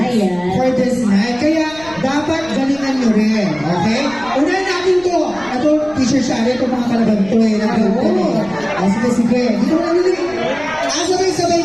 for this night. Kaya dapat galingan nyo rin, okay? Unahin natin to. Ito, Teacher Shari, ito mga kalaban to eh. Sige, sige. Dito na nila. Sabay-sabay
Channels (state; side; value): noise; left; rumble, 22 dB below the sound